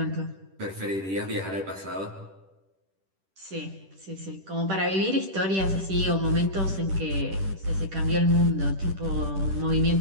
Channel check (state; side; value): late; left; 10 ms